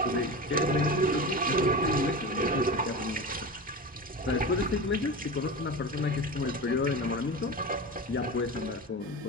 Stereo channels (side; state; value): both; normal; correlation 0.27